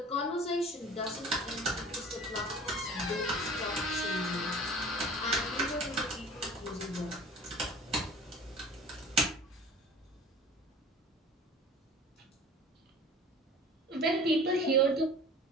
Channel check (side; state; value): both; normal; correlation 0.42